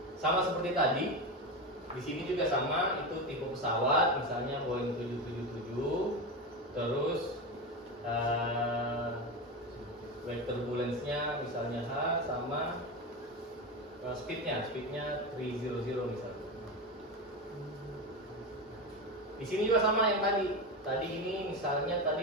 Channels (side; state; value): both; normal; correlation 0.19